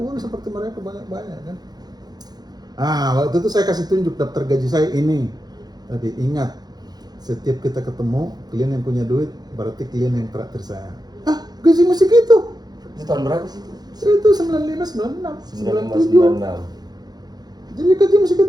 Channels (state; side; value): late; left; 0.19 ms